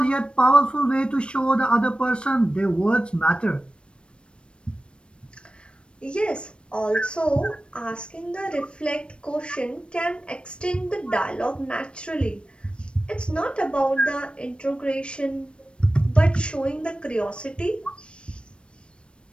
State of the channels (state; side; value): late; right; 0.057 ms